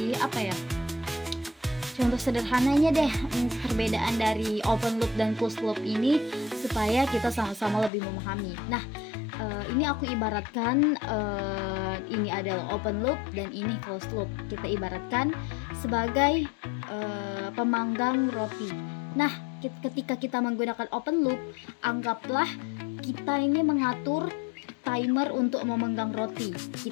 contoh sederhananya deh, perbedaan dari open loop dan closed loop ini supaya kita sama-sama lebih memahami. Nah, ini aku ibaratkan ini adalah open loop dan ini closed loop. Kita ibaratkan sebagai pemanggang roti. Nah, ketika kita menggunakan open loop, anggaplah kita ini mengatur timer untuk memanggang roti.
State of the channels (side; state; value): right; drops out; at 7.9 s